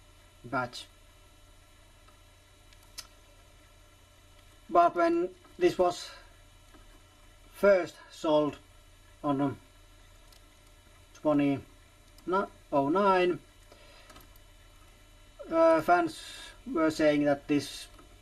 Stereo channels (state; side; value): identical; both; correlation 1.00